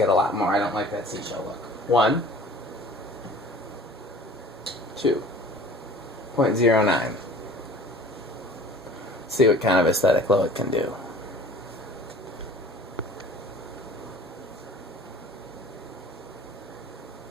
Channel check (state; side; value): normal; both; correlation 0.45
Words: it a lot more. I don't like that seashell look. 1, 2, 0.09. See what kind of aesthetic glow it can do.